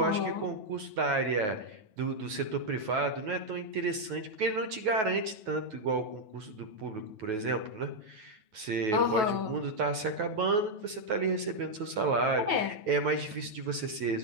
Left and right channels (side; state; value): left; late; 9.3 ms